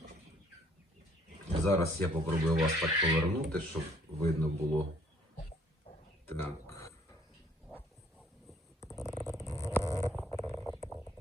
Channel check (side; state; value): both; normal; correlation 0.61